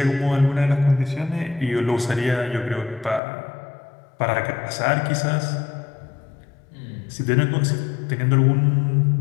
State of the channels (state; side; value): drops out; right; at 3.2 s